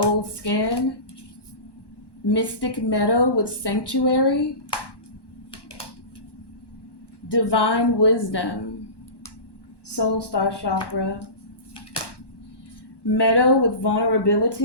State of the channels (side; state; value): right; late; 1.1 ms